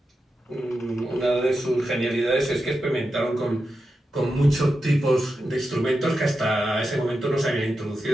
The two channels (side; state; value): both; normal; correlation 0.89